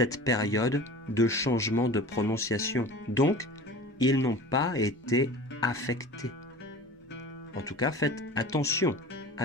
période de changement de prononciation. Donc, ils n'ont pas été affectés. En tout cas, faites attention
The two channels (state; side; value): normal; both; correlation 0.38